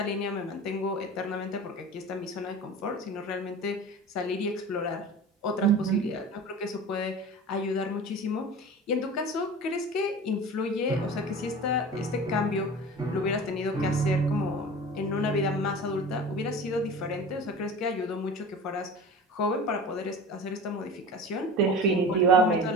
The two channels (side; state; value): both; normal; correlation 0.36